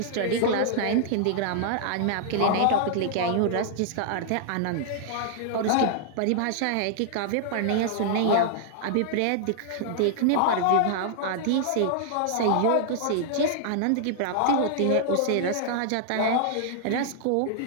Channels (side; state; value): both; different; correlation -0.01